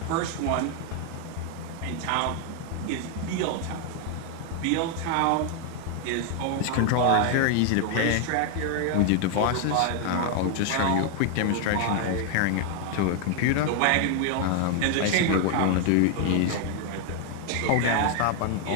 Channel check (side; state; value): both; different; correlation 0.00